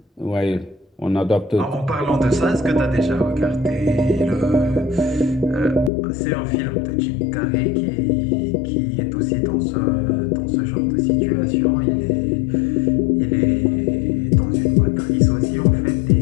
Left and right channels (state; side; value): drops out; right; at 5.9 s